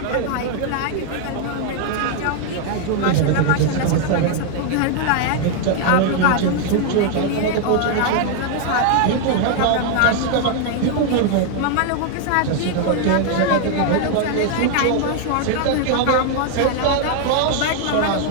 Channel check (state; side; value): different; both; correlation 0.00